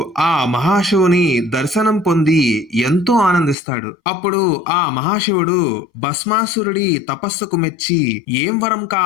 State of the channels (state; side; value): drops out; right; at 3.6 s